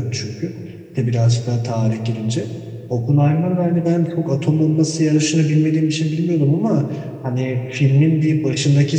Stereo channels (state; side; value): identical; both; correlation 1.00